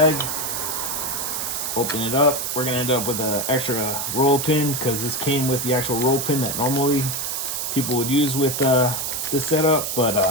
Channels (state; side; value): noise; right; hiss, 2 dB below the sound